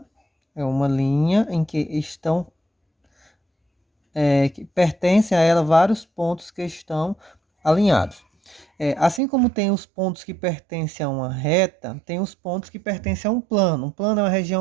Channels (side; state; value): left; drops out; at 9.2 s